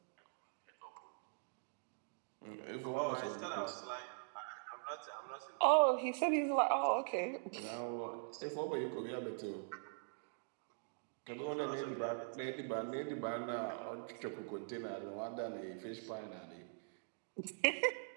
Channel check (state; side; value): silent; left; digital silence